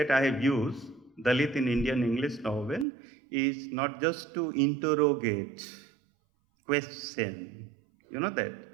I have used, Dalit in Indian English novel, is not just to interrogate, question, that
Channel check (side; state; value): left; drops out; at 2.9 s